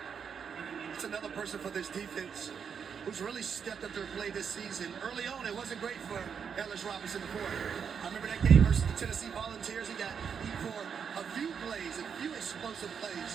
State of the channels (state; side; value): quieter; left; 6.9 dB